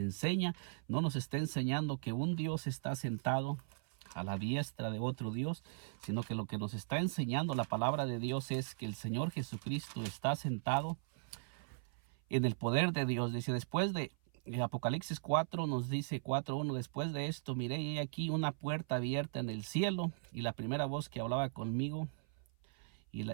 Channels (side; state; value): left; silent; 52 dB below the other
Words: enseña. No nos está enseñando que un Dios está sentado a la diestra de otro Dios, sino que lo que nos está enseñando la palabra de Dios es que el Señor Jesucristo está sentado en el poder de Dios. Dice, después de Apocalipsis 4 nos dice 4:1, después de esto miré y aquí una puerta abierta en el cielo, y la primera voz que hablaba conmigo, y